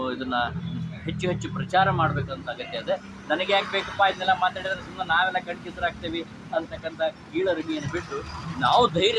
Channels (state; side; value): identical; both; correlation 1.00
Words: ಇದನ್ನು ಹೆಚ್ಚು ಪ್ರಚಾರ ಮಾಡಬೇಕಂತ ಅಗತ್ಯ ಇದೆ. ನನಗೆ ಯಾಕೆ ಬೇಕಪ್ಪ ಇದನ್ನೆಲ್ಲ ಮಾತಾಡಿದ್ರೆ ಸುಮ್ಮನೆ ನಾವೆಲ್ಲ ಕಣ್ಕಿಸರಾಗ್ತೇವೆ ಅಂತಕ್ಕಂಥ ಕೀಳರಿಮೆಯನ್ನು ಬಿಟ್ಟು ನಾವು